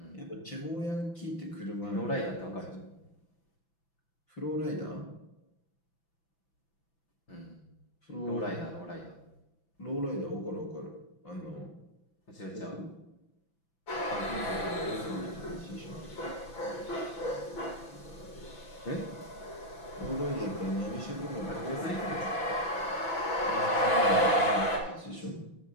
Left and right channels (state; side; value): late; right; 6.0 ms